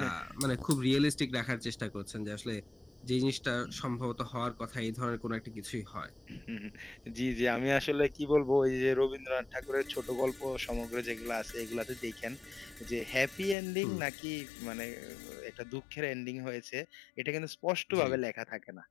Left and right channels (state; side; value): drops out; right; at 13.6 s